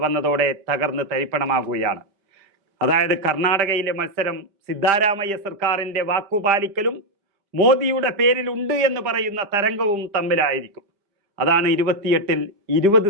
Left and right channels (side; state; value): left; late; 5.0 ms